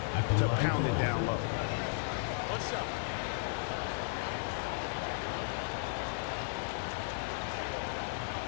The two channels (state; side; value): silent; right; digital silence